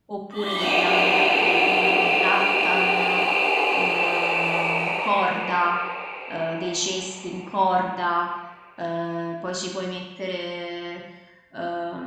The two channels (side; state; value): both; identical; correlation 1.00